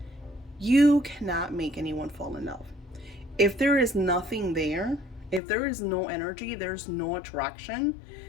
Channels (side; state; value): right; drops out; at 5.4 s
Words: you cannot make anyone fall in love. If there is nothing there, if there is no energy, there's no attraction,